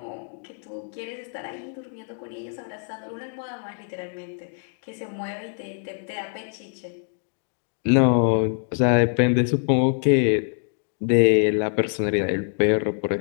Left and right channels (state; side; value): silent; right; 59 dB below the other